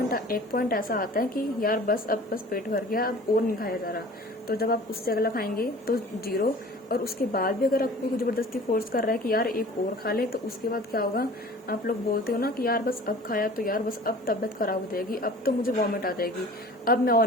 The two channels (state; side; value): normal; both; correlation 0.44